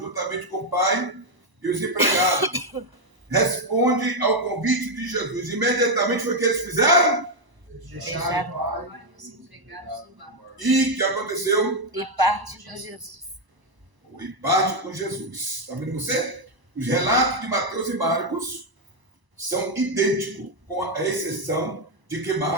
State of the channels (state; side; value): late; left; 1.0 ms